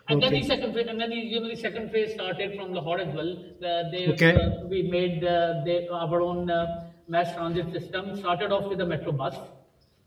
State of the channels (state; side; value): identical; both; correlation 1.00